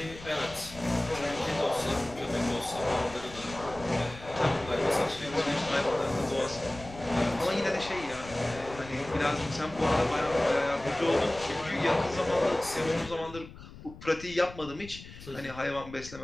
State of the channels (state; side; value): noise; left; rumble, 16 dB below the sound